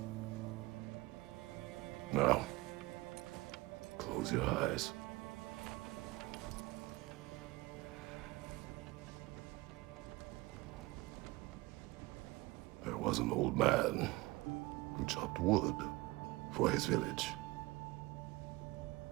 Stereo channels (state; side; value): quieter; left; 21.5 dB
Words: Now, close your eyes. There was an old man who chopped wood for his village.